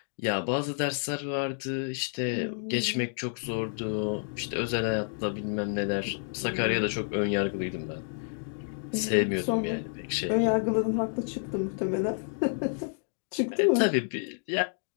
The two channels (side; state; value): right; silent; digital silence